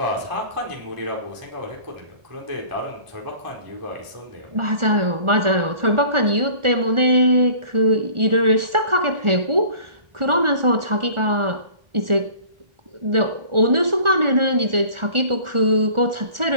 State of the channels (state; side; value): late; left; 1.4 ms